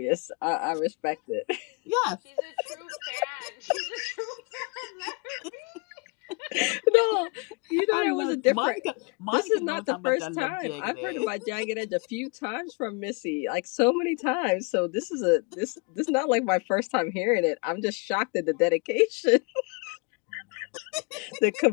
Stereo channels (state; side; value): quieter; right; 32.0 dB